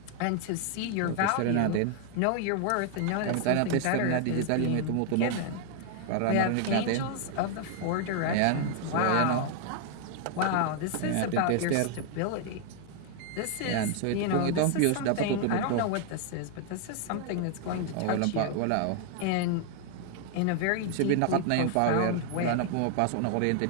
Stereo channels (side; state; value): both; different; correlation 0.00